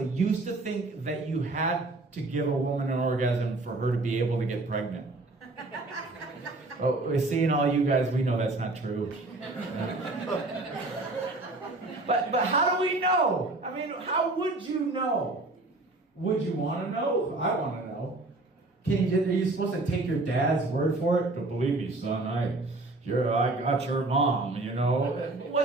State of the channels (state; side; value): quieter; left; 3.0 dB